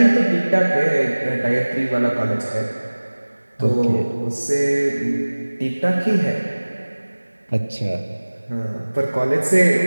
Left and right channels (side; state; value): both; inverted; correlation -1.00